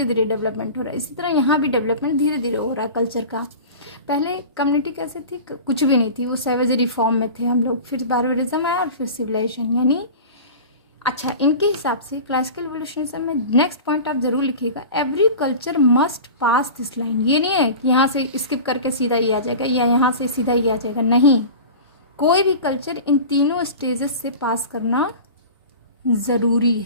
धीरे डेवलपमेंट हो रहा है, इसी तरह यहाँ भी डेवलपमेंट धीरे धीरे हो रहा है कल्चर का। पहले कम्युनिटी कैसे थी, कुछ भी नहीं थी, वो सैवेजरी फॉर्म में थे हम लोग, फिर बार्बरिज्म आया और फिर सिविलाइजेशन। यानी अच्छा, इनके हिसाब से क्लासिकल इवोल्यूशनिज्म में नेक्स्ट पॉइंट आप जरूर लिखिएगा, every culture must pass this line. ये नहीं है कि यहाँ से स्किप करके सीधा ये आ जाएगा या यहाँ से सीधा ये आ जाएगा, नहीं, कोई भी कल्चर इन तीनों स्टेजेस से पास करना ज़रूरी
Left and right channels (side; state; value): both; inverted; correlation -0.34